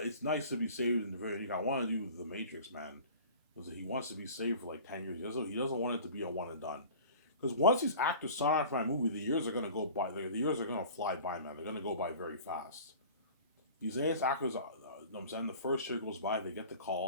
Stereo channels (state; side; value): inverted; both; correlation -0.43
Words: it's nice to be saved in the very unique. I want to do the Matrix, man, because he wants to be saved for like 10 years. He doesn't want it to be a one and done. Because once these actors sign on for my movie, the years are gonna go by. The years are gonna fly by, man. They're gonna go by very fast. These AS actors, you know what I'm saying, the first year goes by, they get the